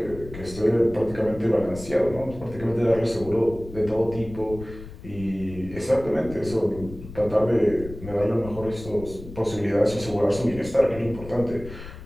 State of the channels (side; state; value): left; noise; rumble, 14 dB below the sound